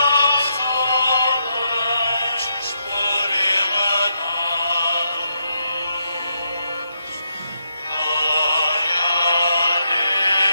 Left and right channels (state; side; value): inverted; both; correlation -0.80